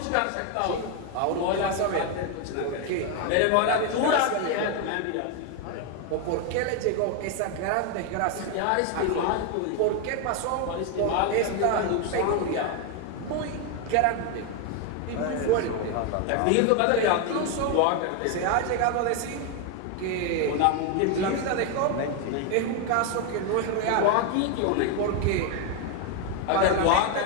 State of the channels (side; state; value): both; different; correlation 0.01